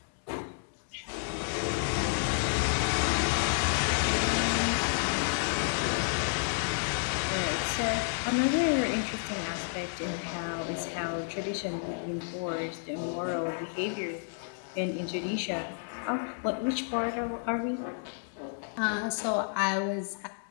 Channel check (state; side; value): silent; right; digital silence